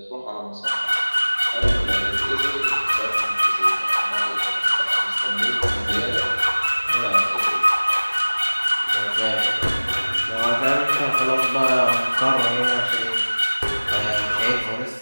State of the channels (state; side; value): inverted; both; correlation -1.00